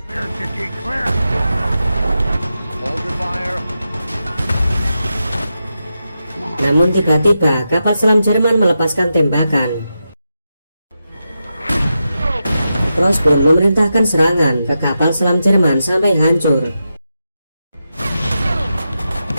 Clear, Dike, clear. Hold your fire. Namun tiba-tiba kapal selam Jerman melepaskan tembakan. Cross pun memerintahkan serangan ke kapal selam Jerman sampai hancur.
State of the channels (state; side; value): inverted; both; correlation -0.89